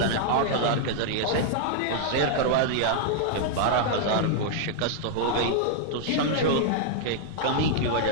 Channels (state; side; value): different; both; correlation -0.01